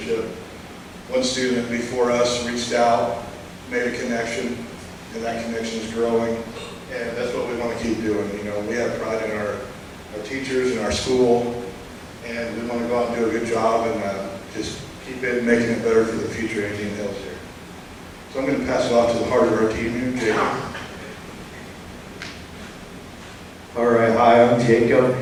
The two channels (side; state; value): both; identical; correlation 1.00